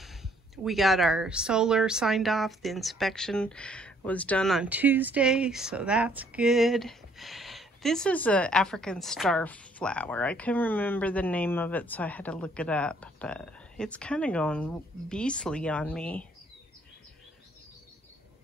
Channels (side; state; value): both; normal; correlation 0.64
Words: We got our solar signed off. The inspection was done on Tuesday, so that's good. This is an African star flower. I couldn't remember the name of it, so I had to look it up, but it's kind of going beastly on me.